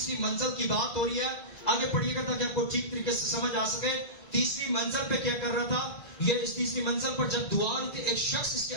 منزل کی بات ہو رہی ہے، آگے پڑھیے گا تاکہ آپ کو ٹھیک طریقے سے سمجھ آ سکے. تیسری منزل پہ کیا کر رہا تھا؟ یہ اس تیسری منزل پر جب دعا ہوئی تھی، ایک شخص اس کے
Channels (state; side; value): late; right; 2.0 ms